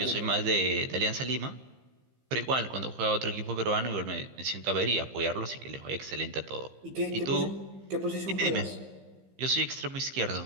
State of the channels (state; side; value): late; left; 15 ms